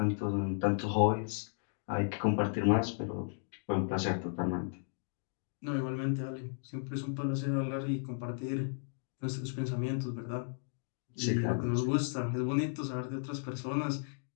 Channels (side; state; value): right; silent; digital silence